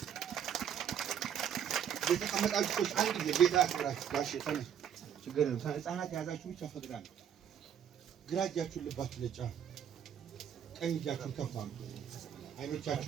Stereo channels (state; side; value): quieter; left; 8.8 dB